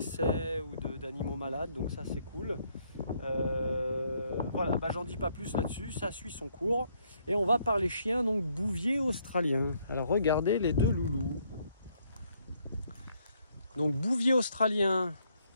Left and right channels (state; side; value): inverted; both; correlation -0.70